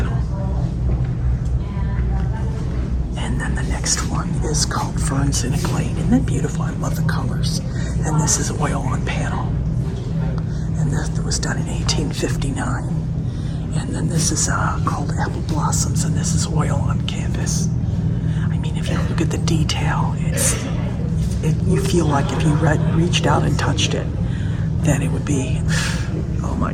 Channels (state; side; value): identical; both; correlation 1.00